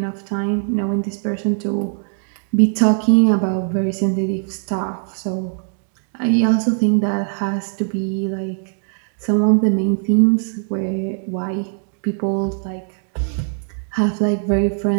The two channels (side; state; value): left; silent; 64 dB below the other